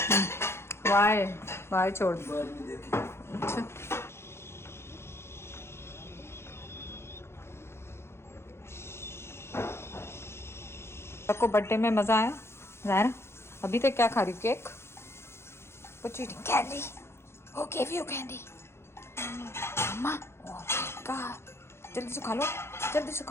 वाई छोड़ दो। बाद में देखें। अच्छा, सबको बर्थडे में मजा आया? ज़ाहिरा अभी तक क्या खा रही? Cake? What you eating? Candy? Who gave you candy? Mama? Oh my God! जल्दी से खा लो,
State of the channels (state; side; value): late; right; 0.12 ms